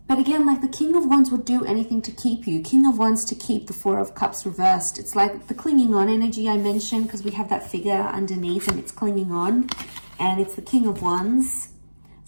But again, like the King of Wands would do anything to keep you. King of Wands to keep the Four of Cups reversed. It's like the clinging on energy I mentioned, because we have that figure underneath and it's clinging on. And it's the King of Wands.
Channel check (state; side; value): inverted; both; correlation -1.00